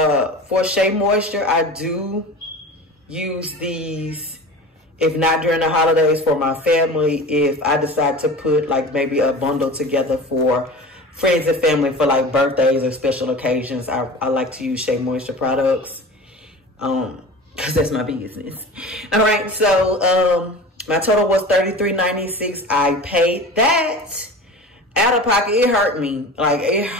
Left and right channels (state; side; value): normal; both; correlation 0.35